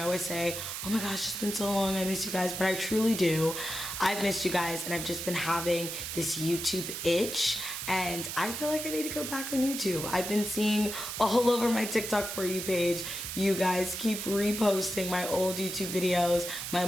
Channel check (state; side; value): noise; right; hiss, 5 dB below the sound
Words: always say, oh my gosh, it's been so long, I miss you guys, but I truly do. I've missed you guys, and I've just been having this YouTube itch, and I feel like I need to go back on YouTube. I've been seeing all over my TikTok For You page, you guys keep reposting my old YouTube videos, my